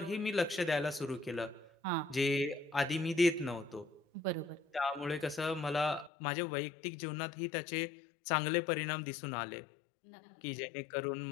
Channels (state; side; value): drops out; right; at 6.1 s